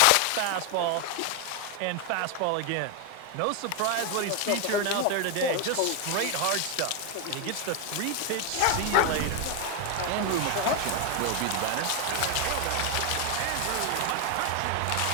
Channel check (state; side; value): different; both; correlation 0.01